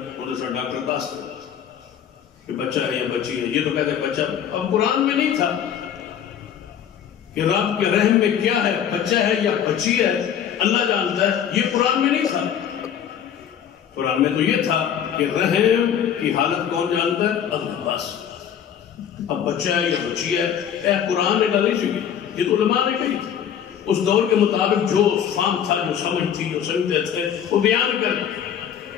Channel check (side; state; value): right; quieter; 9.0 dB